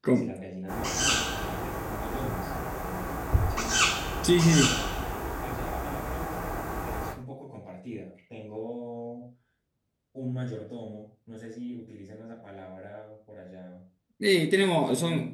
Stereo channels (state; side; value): identical; both; correlation 1.00